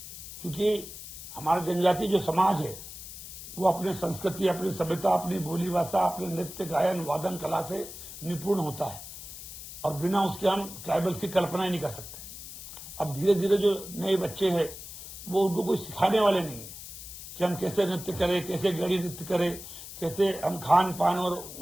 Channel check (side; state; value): left; noise; hiss, 12 dB below the sound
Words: क्योंकि हमारा जनजाति जो समाज है वो अपने संस्कृति, अपनी सभ्यता, अपनी बोली भाषा, अपने नृत्य, गायन, वादन कला से निपुण होता है और बिना उसके हम ट्राइबल्स की कल्पना ही नहीं कर सकते। अब धीरे धीरे जो नए बच्चे हैं वो उनको कोई सिखाने वाले नहीं है कि हम कैसे नृत्य करें, कैसे गड़ी नृत्य करें, कैसे हम खान पान और